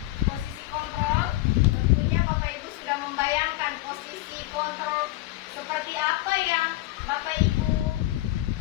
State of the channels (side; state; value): right; quieter; 17.4 dB